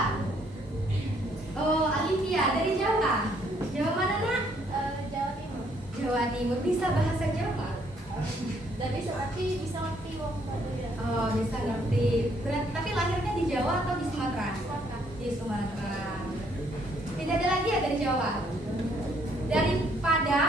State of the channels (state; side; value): normal; both; correlation 0.67